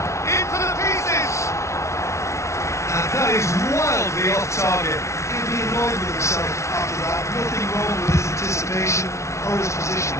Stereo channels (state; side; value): late; right; 0.14 ms